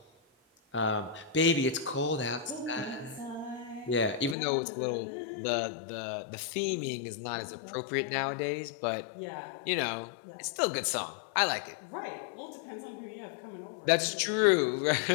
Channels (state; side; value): drops out; right; at 4.4 s